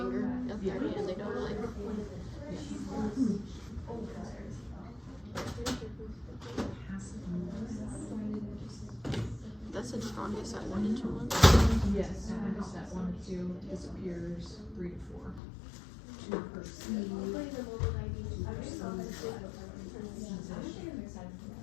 up their hand, they don't like. That's the strongest at 1 and 2 months. Yes, strongest at 1 and 2 disappears 3 to 4. 2 per seed.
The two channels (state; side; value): drops out; right; at 15.4 s